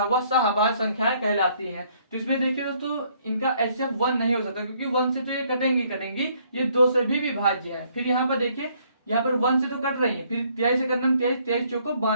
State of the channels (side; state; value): both; inverted; correlation -0.66